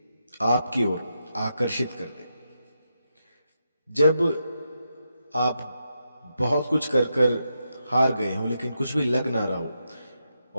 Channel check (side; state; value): both; inverted; correlation -0.85